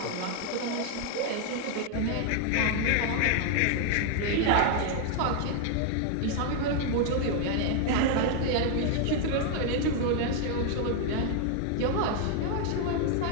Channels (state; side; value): different; both; correlation 0.00